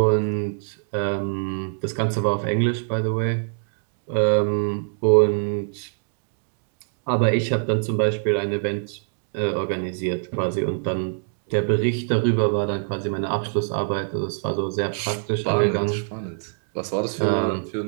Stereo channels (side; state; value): left; silent; digital silence